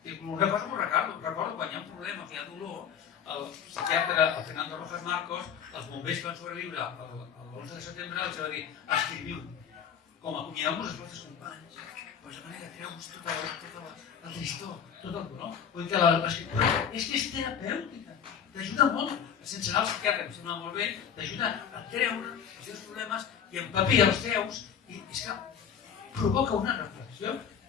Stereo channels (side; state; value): right; quieter; 7.9 dB